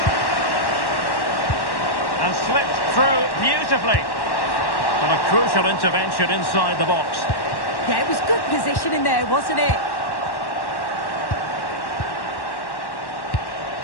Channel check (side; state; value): right; late; 1.1 ms